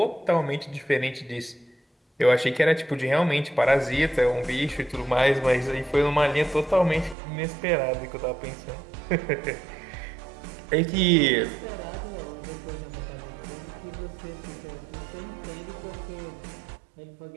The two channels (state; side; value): drops out; left; at 7.2 s